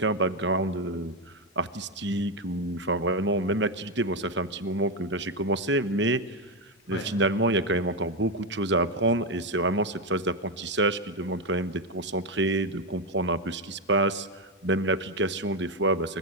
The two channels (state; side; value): normal; both; correlation 0.07